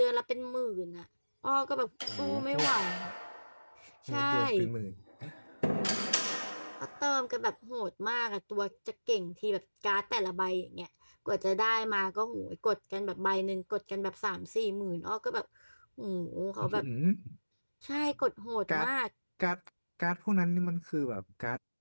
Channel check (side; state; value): both; inverted; correlation -1.00